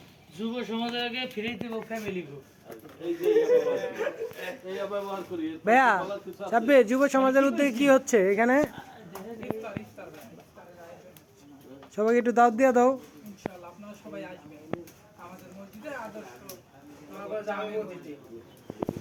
যুব সমাজের আগে ফিরে দিব ফ্যামিলি গো। এই যে এই ব্যবহার করি ভাইয়া সাব্বির, যুব সমাজের উদ্যোগে কি হচ্ছে এখানে? সবাইকে একটু দাওয়াত দিয়ে দাও। ইনশাআল্লাহ আপনারা সবাই আসবেন আমাদের মসজিদে আদর্শ জামে মসজিদে।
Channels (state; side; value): identical; both; correlation 1.00